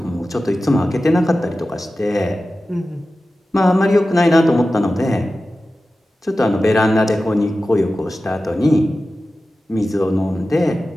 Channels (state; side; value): normal; both; correlation 0.94